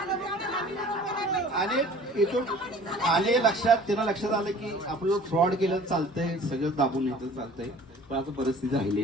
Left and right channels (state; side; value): normal; both; correlation 0.48